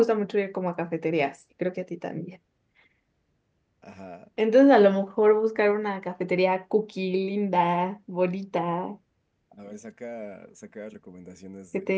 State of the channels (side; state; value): both; identical; correlation 1.00